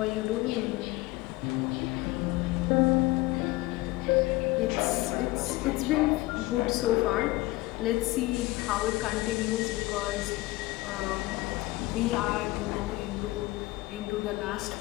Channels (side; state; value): right; quieter; 19.9 dB